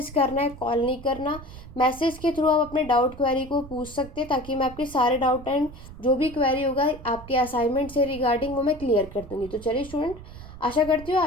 करना है, कॉल नहीं करना। मैसेज के थ्रू आप अपने डाउट क्वेरी को पूछ सकते हैं, ताकि मैं आपके सारे डाउट एंड जो भी क्वेरी होगा आपके असाइनमेंट से रिगार्डिंग वो मैं क्लियर कर दूँगी। तो चलिए स्टूडेंट, आशा करती हूँ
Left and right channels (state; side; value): noise; right; rumble, 15 dB below the sound